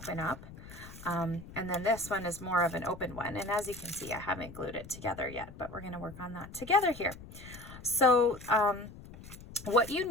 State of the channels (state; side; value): noise; left; rumble, 16 dB below the sound